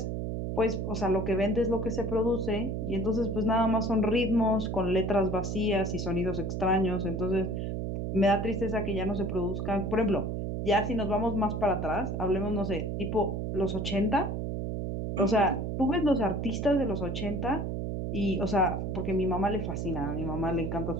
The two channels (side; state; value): right; noise; hum, 2 dB below the sound